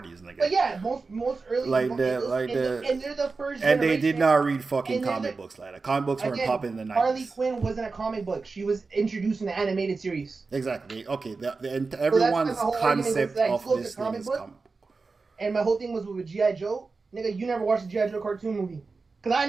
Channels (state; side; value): quieter; left; 4.2 dB